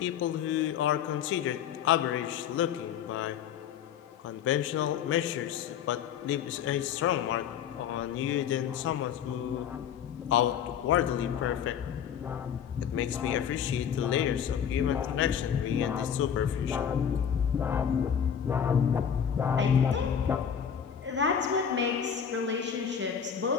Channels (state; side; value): quieter; right; 8.3 dB